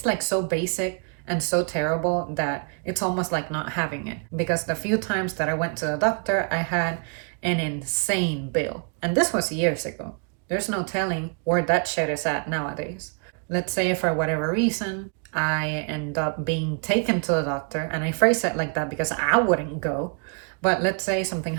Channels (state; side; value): quieter; left; 39.7 dB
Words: like so basic and so terrible that it's almost like not having it. Because the few times that I went to the doctor, I had an insane bill. And this was years ago. There's no telling where that shit is at nowadays. Let's say for whatever reason, I end up being taken to the doctor, and I phrase it like that because I wouldn't go. But let's say something